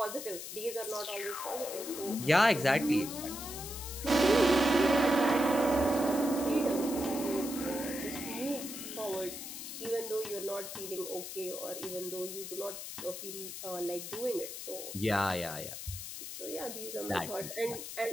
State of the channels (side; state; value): left; noise; hiss, 8 dB below the sound